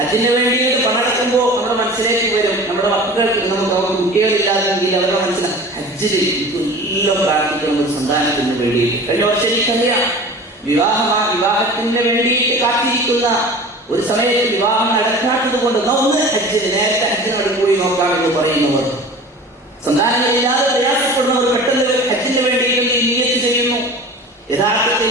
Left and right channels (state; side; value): normal; both; correlation 0.39